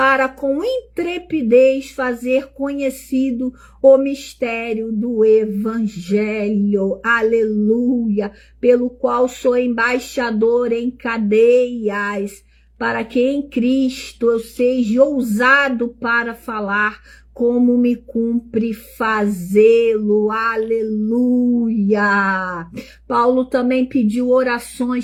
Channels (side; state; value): both; identical; correlation 1.00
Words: com intrepidez fazer conhecido o mistério do Evangelho, aleluia, pelo qual sou embaixador em cadeias, para que em Cristo eu seja ousado para falar, como me cumpre fazê-lo, aleluia. Paulo também pediu